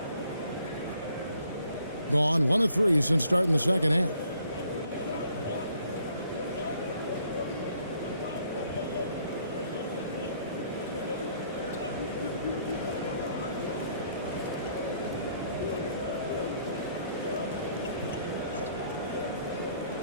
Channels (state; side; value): inverted; both; correlation -0.65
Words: Gone 1 of 3 since starting the second half.